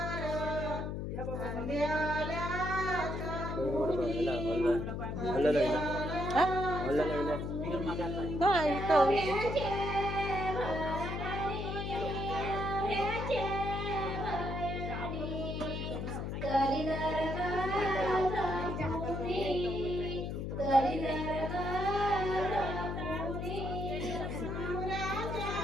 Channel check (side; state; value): left; noise; hum, 3 dB below the sound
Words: हल्ला लागला. हल्ला लागला. बिगर मागायचा. हा इथं